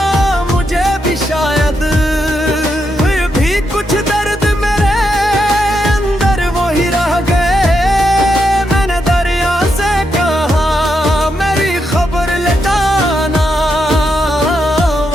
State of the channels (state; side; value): normal; both; correlation 0.82